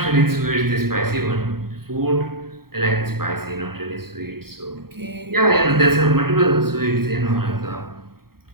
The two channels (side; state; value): left; late; 0.94 ms